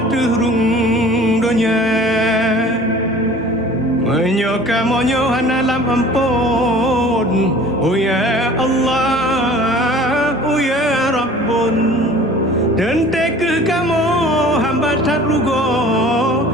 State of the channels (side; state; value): both; normal; correlation 0.46